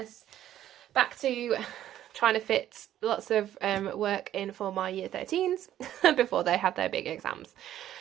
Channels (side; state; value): left; quieter; 12.1 dB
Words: back to trying to fit lots of work in for my year 13s before they have their big exams.